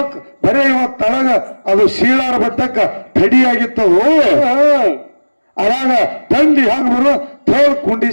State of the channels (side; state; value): both; inverted; correlation -1.00